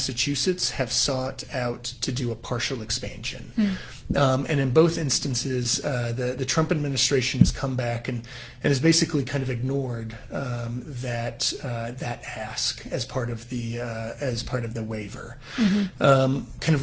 have sought out to do a partial expansion. And in both instances, the Trump administration has come back and has basically kind of ignored that ask as part of the waiver, kind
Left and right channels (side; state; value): both; identical; correlation 1.00